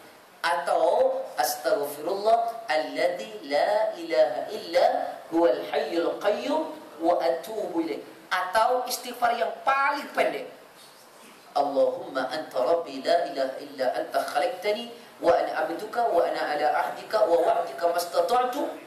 Atau astaghfirullah alladzi la ilaha illa huwal hayyul qayyum wa atubu ilaih. Atau istighfar yang paling pendek, Allahumma anta rabbi la ilaha illa anta khalaqtani wa ana abduka wa ana ala ahdika wa wa'dika mastata'tu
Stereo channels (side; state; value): both; identical; correlation 1.00